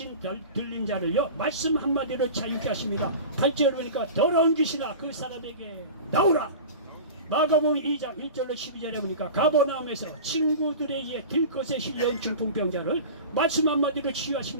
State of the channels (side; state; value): both; inverted; correlation -0.33